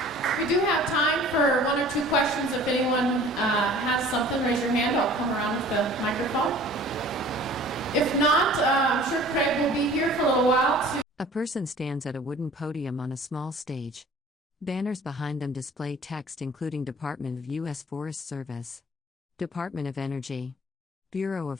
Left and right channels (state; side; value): normal; both; correlation 0.48